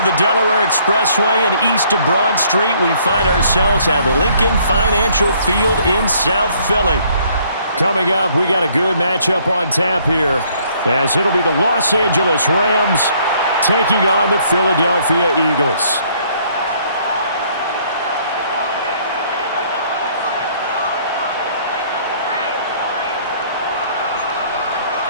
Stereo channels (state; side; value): inverted; both; correlation -0.63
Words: the Delaware Expressway and east of Broad Street, we find ourselves at Lincoln Financial Field in South Philly. Coming up, we got a good matchup on tap here, as it'll be the Los Angeles Rams taking on the Philadelphia Eagles.